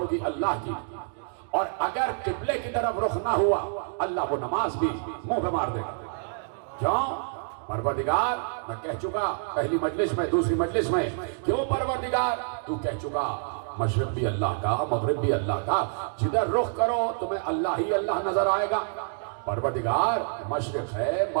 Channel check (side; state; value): left; silent; digital silence